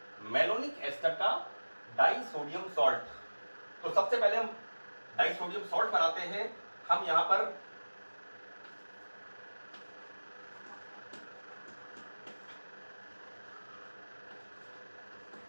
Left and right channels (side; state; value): both; inverted; correlation -1.00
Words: मेलोनिक एस्टर का डाइसोडियम सॉल्ट, तो सबसे पहले हम डाइसोडियम सॉल्ट बनाते हैं। हम यहां पर